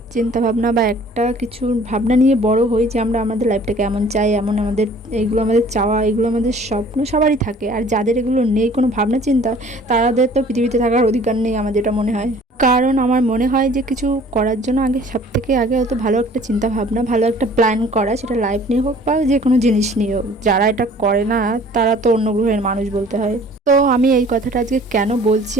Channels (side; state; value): both; normal; correlation 0.51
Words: চিন্তা ভাবনা বা একটা কিছু ভাবনা নিয়ে বড় হই যে আমরা আমাদের লাইফটাকে এমন চাই, এমন আমাদের এইগুলো আমাদের চাওয়া, এগুলো আমাদের স্বপ্ন সবারই থাকে। আর যাদের এগুলো নেই কোনো ভাবনা চিন্তা, তাদের তো পৃথিবীতে থাকার অধিকার নেই আমার যেটা মনে হয়। কারণ আমার মনে হয় যে কিছু করার জন্য আগে সব থেকে আগে হয়তো ভালো একটা চিন্তা ভাবনা, ভালো একটা প্ল্যান করা, সেটা লাইফ নিয়ে হোক বা যে কোনো জিনিস নিয়ে হোক। যারা এটা করে না তারা তো অন্য গ্রহের মানুষ বলতে হয়। তো আমি এই কথাটা আজকে কেন বলছি,